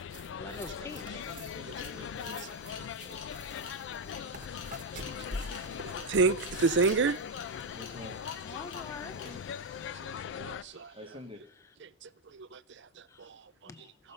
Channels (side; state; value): both; normal; correlation 0.05